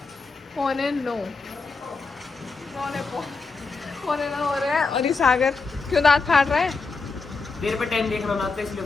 8:45। 9:45 हो रहे हैं और ये सागर क्यों दांत फाड़ रहा है? देर पे टाइम देख रहा ना तो इसलिए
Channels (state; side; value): quieter; right; 4.2 dB